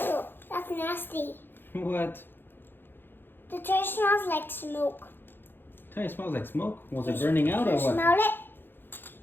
that's nasty. What? The toy smells like smoke. Tell you, it smells like smoke. Was it burning out or You what? smell it?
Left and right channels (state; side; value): late; right; 0.10 ms